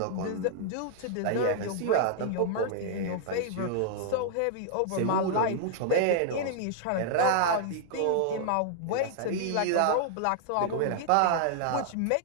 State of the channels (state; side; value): different; both; correlation -0.01